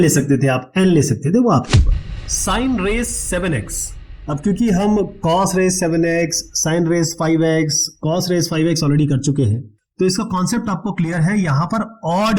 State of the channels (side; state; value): both; identical; correlation 1.00